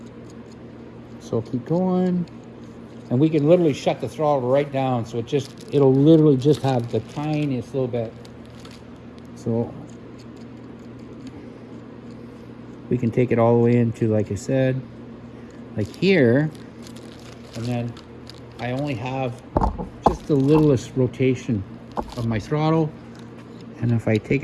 So keep going. And we can literally shut the throttle right down, so it'll literally just have the tiniest little bit. So we can take it all the way into, like I said, like here, and then I only have just the littlest rotation of my throttle. And if I take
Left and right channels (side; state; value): both; identical; correlation 1.00